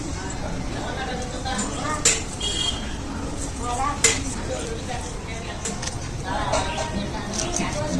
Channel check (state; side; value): identical; both; correlation 1.00